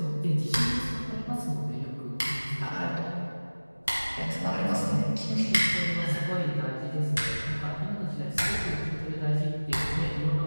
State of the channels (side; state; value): both; inverted; correlation -1.00